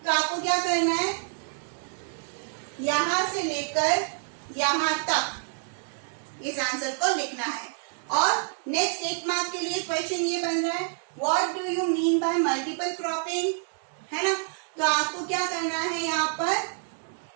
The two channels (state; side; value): silent; left; 60 dB below the other